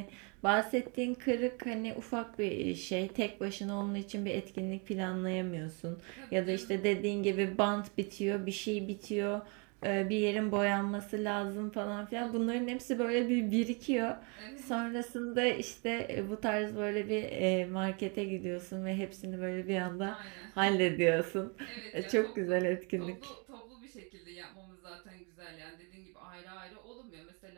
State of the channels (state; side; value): quieter; left; 34.2 dB